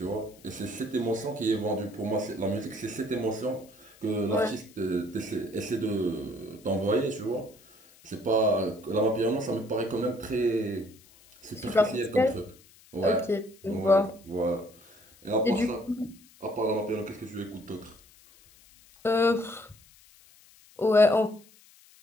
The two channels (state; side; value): noise; left; hiss, 26 dB below the sound